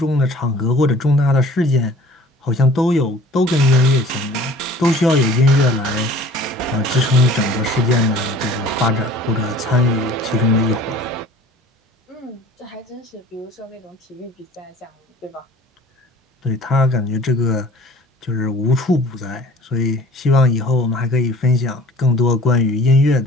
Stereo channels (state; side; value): normal; both; correlation 0.47